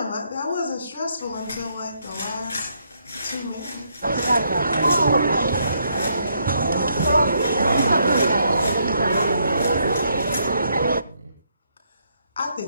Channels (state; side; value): inverted; both; correlation -0.74